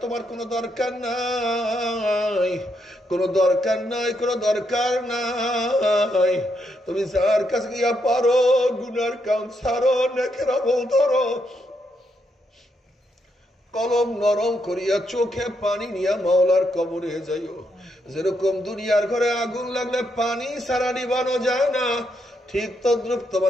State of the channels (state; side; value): normal; both; correlation 0.78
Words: তোমার কোনো দরকার নাই, কোনো দরকার নাই, কোনো দরকার নাই। তুমি যার কাছে গিয়া পারো গুনার কাম ছাড়ো, নেকের আমল ধরো, কলম নরম করিয়া চোখে পানি নিয়া মাওলার কবরে যাইও। যেরকম দুনিয়ার ঘরে আগুন লাগলে পানি ছাড়া নিবানো যায় না, ঠিক তদ্রুপ